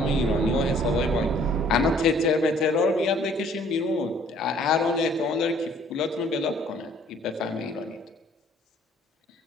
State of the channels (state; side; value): normal; both; correlation 0.59